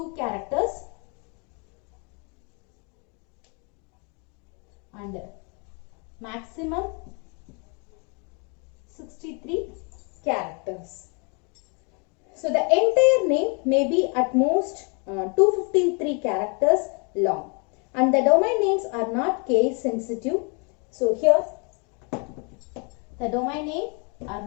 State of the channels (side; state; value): right; quieter; 35.0 dB